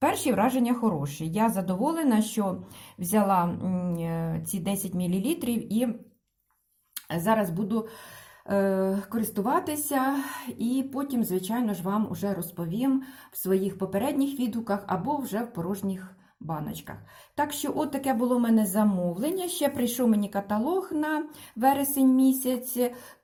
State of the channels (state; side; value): identical; both; correlation 1.00